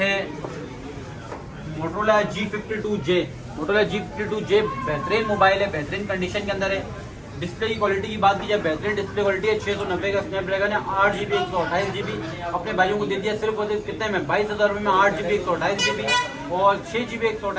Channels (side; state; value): both; identical; correlation 1.00